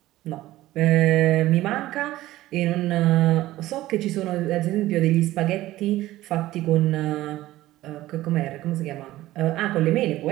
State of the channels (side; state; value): left; quieter; 16.0 dB